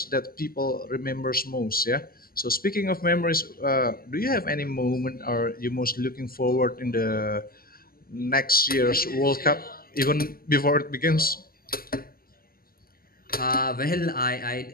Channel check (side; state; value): right; late; 0.42 ms